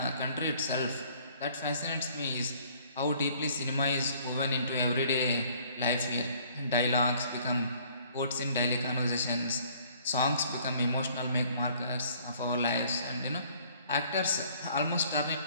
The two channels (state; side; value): inverted; both; correlation -0.58